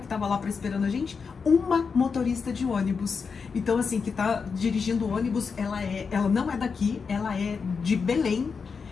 estava lá esperando a gente? Uma motorista de ônibus. Então, assim, que está dirigindo o ônibus, ela não é daqui, ela é de Belém.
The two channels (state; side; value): quieter; right; 5.5 dB